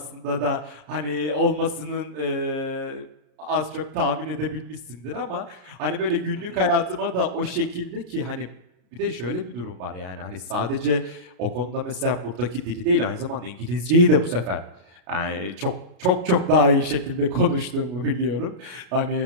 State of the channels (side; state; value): left; late; 33 ms